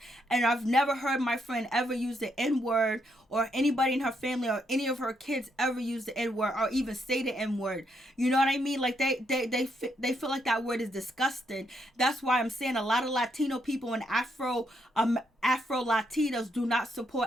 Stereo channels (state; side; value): normal; both; correlation 0.76